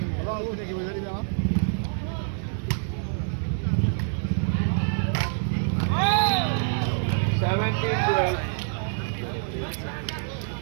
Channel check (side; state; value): left; silent; 61 dB below the other